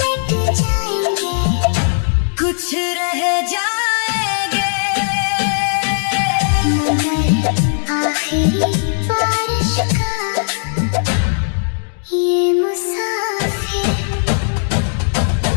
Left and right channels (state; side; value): silent; right; digital silence